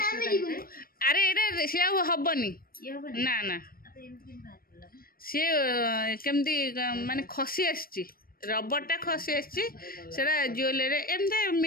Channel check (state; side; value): late; right; 0.43 ms